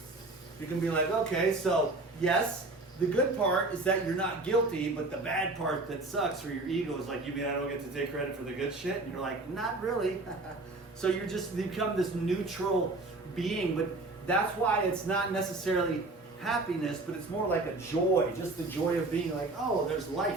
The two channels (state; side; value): quieter; left; 3.1 dB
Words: You can be like, okay, so yes, the good part is that you're not guilty, but the bad part that sucks for your ego is like, you mean I don't get to take credit for the good shit? And you're like, not really. So you're just become this neutral being, but that's why it's not necessarily happiness, but it's more like a joy, just the joy of being like, oh, there's